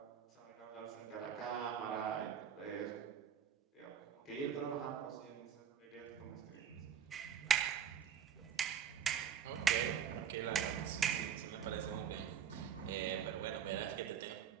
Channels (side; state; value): left; quieter; 8.2 dB